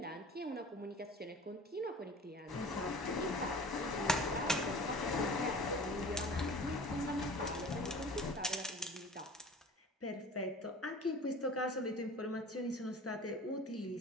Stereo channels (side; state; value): both; normal; correlation 0.42